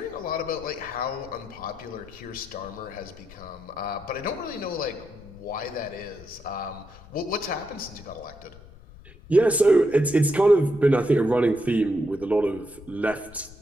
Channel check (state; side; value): noise; left; rumble, 21 dB below the sound